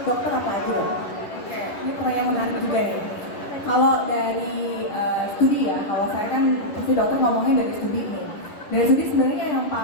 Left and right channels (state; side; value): late; right; 11 ms